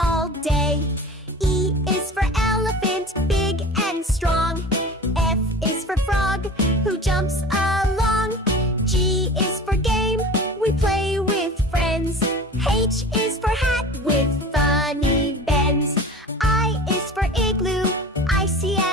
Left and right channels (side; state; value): both; normal; correlation 0.37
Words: day. E is for elephant, big and strong. F is for frog, who jumps along. G is for game, we play with friends. H is for hat with funny bends. I is for igloo, icy